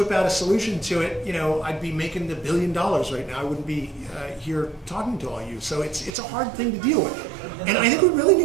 out a solution to it, I'd be making $1 billion right now. I wouldn't be here talking to all you. So it's a hard thing to deal with. And I think we really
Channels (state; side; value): drops out; left; at 6.1 s